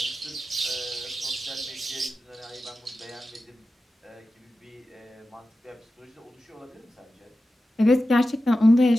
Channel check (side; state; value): both; normal; correlation 0.92